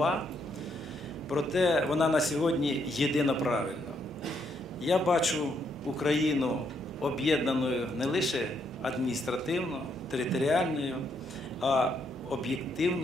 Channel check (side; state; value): both; normal; correlation 0.74